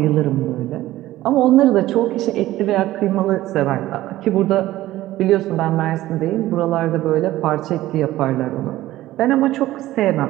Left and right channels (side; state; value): left; quieter; 15.6 dB